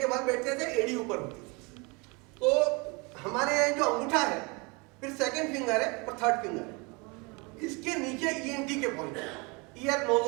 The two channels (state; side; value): quieter; left; 28.9 dB